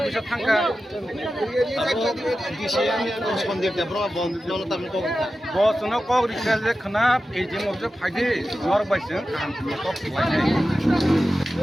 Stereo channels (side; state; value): both; normal; correlation 0.93